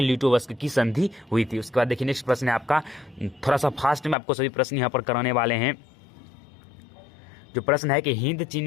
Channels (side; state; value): right; drops out; at 4.2 s